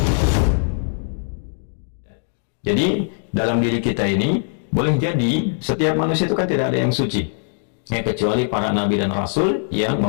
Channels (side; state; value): right; silent; digital silence